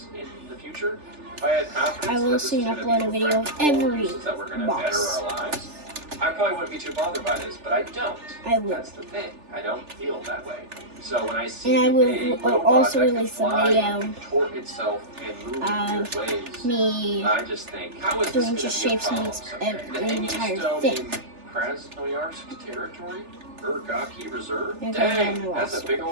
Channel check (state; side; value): late; left; 3.4 ms